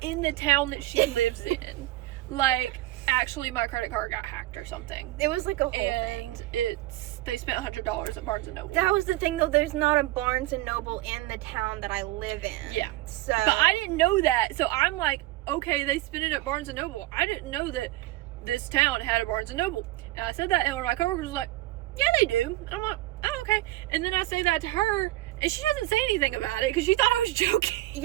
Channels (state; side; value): quieter; left; 17.4 dB